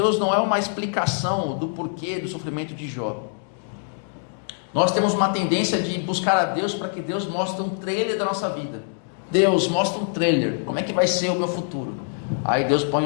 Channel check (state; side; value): silent; right; digital silence